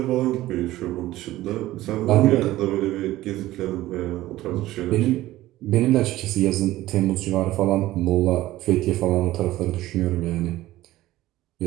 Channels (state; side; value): quieter; left; 16.0 dB